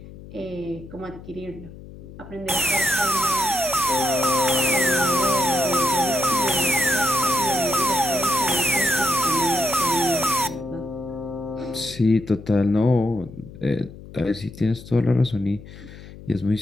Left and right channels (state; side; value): noise; left; hum, 16 dB below the sound